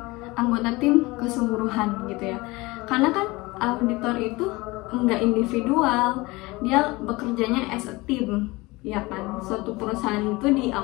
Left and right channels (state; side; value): quieter; right; 22.3 dB